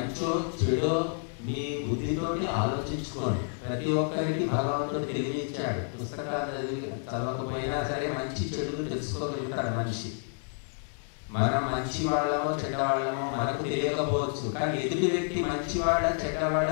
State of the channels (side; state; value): right; silent; 58 dB below the other